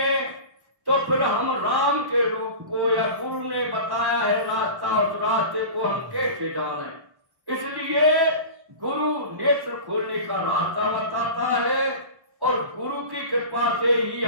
तो फिर हम राम के रूप को या गुरु ने बताया है रास्ता, उस रास्ते को हम कैसे जाने। इसलिए गुरु नेत्र खोलने का रास्ता बताता है और गुरु की कृपा से ही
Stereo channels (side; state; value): left; late; 1.1 ms